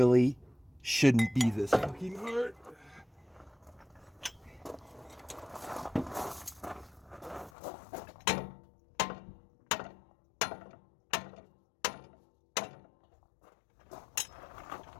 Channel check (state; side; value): drops out; right; at 7.5 s